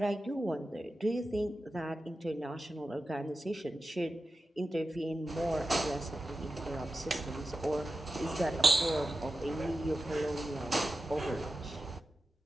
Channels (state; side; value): normal; both; correlation 0.91